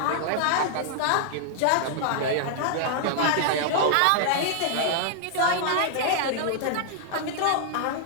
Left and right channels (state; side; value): different; both; correlation -0.01